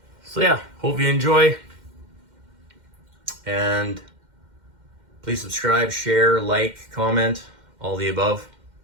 So yeah, hope you enjoy. And please subscribe, share, like, comment, all the above.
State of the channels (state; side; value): late; left; 2.1 ms